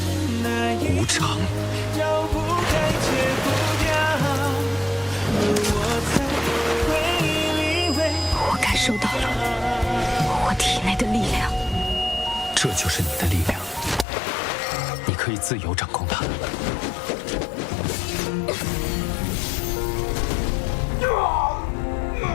无常。我感受到了我体内的力量，这就是你的力量，你可以自由掌控它。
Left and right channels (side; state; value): right; drops out; at 14.1 s